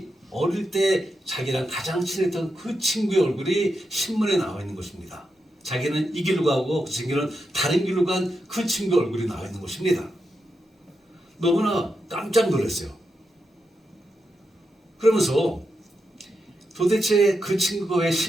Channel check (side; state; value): both; normal; correlation 0.85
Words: 어릴 때 자기랑 가장 친했던 그 친구의 얼굴이 신문에 나와 있는 것입니다. 자기는 이 길로 가고 그 친구는 다른 길로 간 그 친구의 얼굴이 나와 있는 것입니다. 너무나 깜짝 놀랐어요. 그러면서 도대체 그 친구가 왜